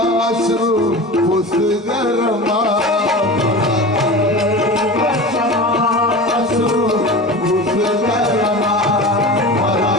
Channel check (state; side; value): normal; both; correlation 0.32